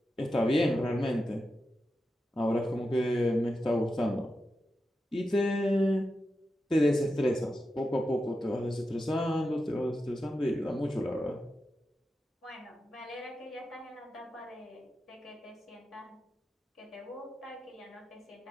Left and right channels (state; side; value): normal; both; correlation 0.90